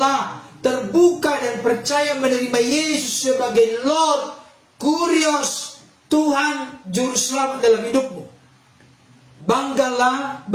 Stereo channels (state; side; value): identical; both; correlation 1.00